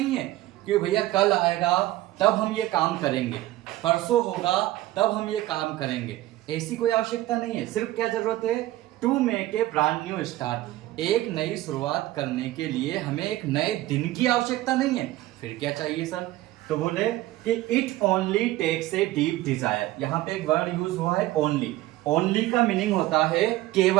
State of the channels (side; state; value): left; quieter; 16.4 dB